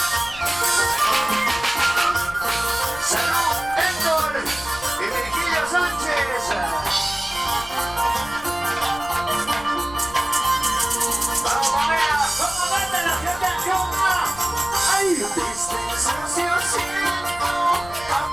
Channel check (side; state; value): left; noise; rumble, 18 dB below the sound